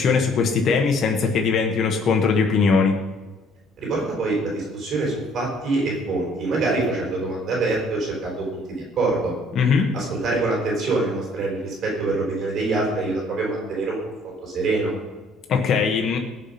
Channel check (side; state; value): both; normal; correlation 0.59